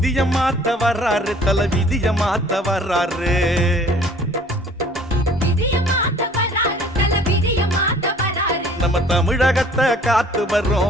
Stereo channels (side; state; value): both; normal; correlation 0.53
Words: விதிய மாத்த வர்றாரு, தல விதிய மாத்த வர்றாரு. நம்ம தமிழகத்தை காத்து